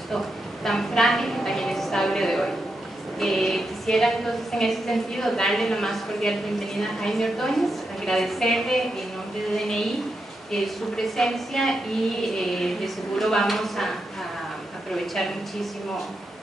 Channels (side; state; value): both; normal; correlation 0.85